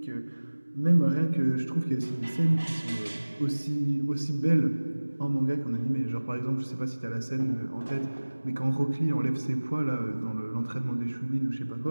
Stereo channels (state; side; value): inverted; both; correlation -1.00